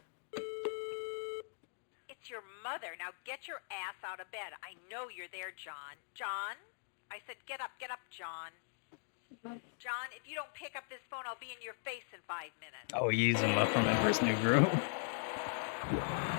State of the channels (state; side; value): silent; right; digital silence